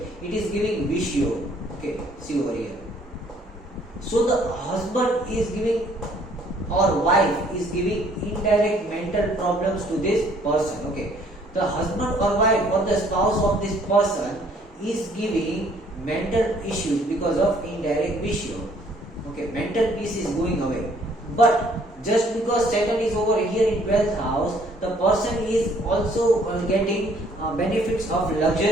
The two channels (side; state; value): both; normal; correlation 0.61